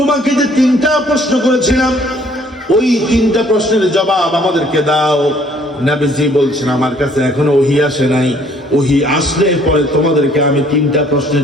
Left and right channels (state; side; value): normal; both; correlation 0.61